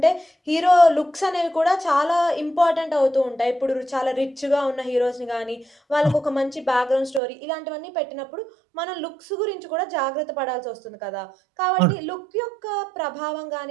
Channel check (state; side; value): drops out; left; at 7.2 s